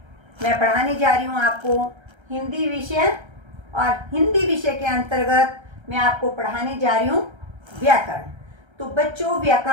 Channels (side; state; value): left; late; 1.3 ms